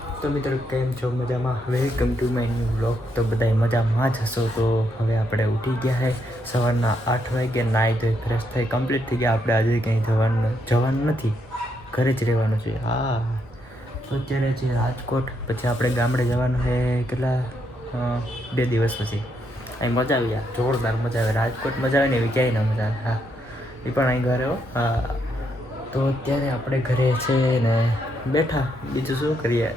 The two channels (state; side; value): normal; both; correlation 0.77